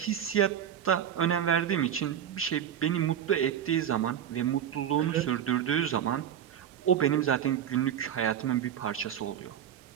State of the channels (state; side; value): quieter; left; 9.6 dB